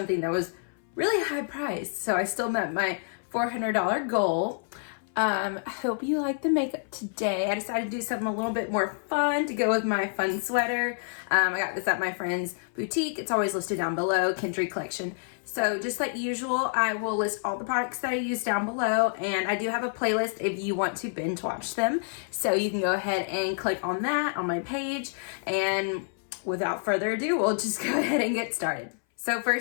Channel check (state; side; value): silent; right; 59 dB below the other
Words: that was really high priced, so I still met my $400 goal. I hope you like the makeup today. I decided to do something a little bit more fun to go with my fun sweater. I got this at my friend's boutique. It's always listed down below, Kindred Collection. So just like usual, I will list all the products that I use down below, and I do have a playlist if you want to binge watch them. So you can go ahead and click on that on my page, and without further ado, we'll just go ahead and get started. So